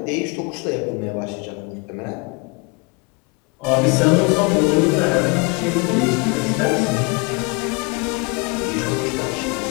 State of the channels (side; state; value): right; quieter; 29.3 dB